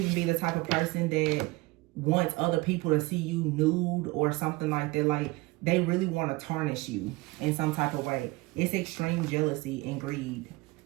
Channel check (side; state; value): left; quieter; 22.3 dB